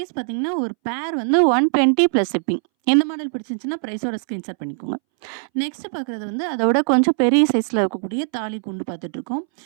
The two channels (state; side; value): silent; left; 63 dB below the other